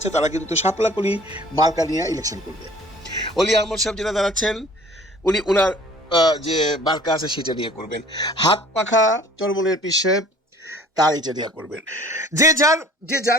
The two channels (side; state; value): both; normal; correlation 0.50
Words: তারা কিন্তু শাপলাকলি মার্কা নিয়ে ইলেকশন করবে। অলি আহমদ সাহেব যেটা দাঁড়াচ্ছেন উনি ওনার যে মার্কা আছে সেটা নিয়ে করবেন। হাত পাখা চরমনের পীর সাহেব তার এটা নিয়ে করবেন। যে